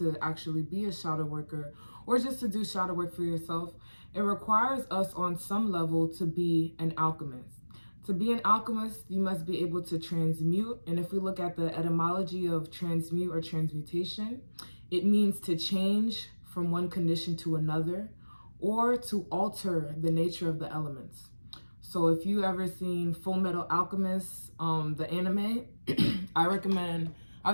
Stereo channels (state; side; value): inverted; both; correlation -1.00